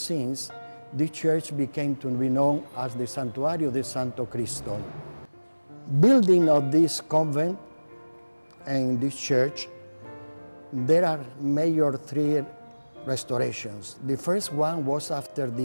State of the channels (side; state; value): both; inverted; correlation -1.00